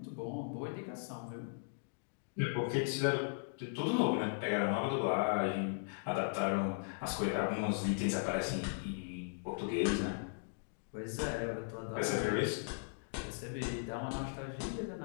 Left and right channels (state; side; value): silent; right; digital silence